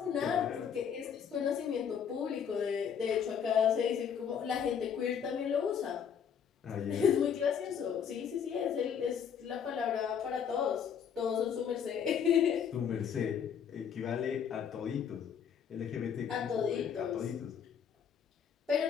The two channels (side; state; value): right; quieter; 7.7 dB